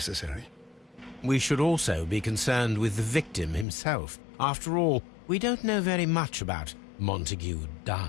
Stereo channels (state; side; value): drops out; right; at 3.7 s